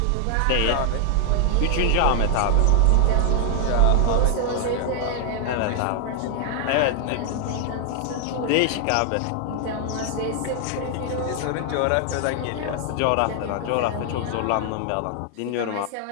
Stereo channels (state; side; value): different; both; correlation 0.00